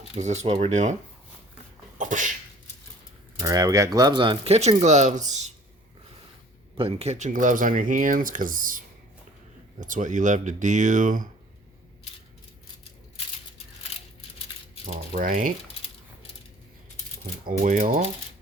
Is this what we're doing? Alright, we got gloves on. Kitchen gloves. Putting kitchen gloves on your hands because that's what you love to do. Alright. Put oil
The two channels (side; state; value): both; normal; correlation 0.51